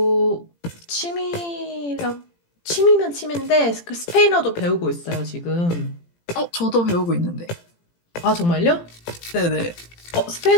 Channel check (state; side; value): late; right; 17 ms